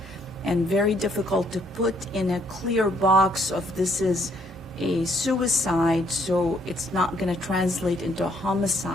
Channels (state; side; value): normal; both; correlation 0.67